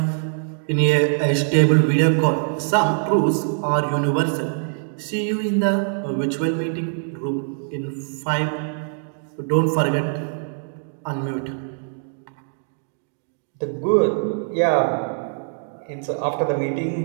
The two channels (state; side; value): silent; left; digital silence